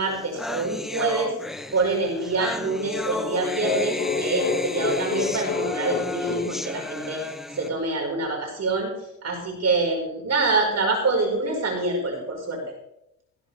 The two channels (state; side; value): normal; both; correlation -0.03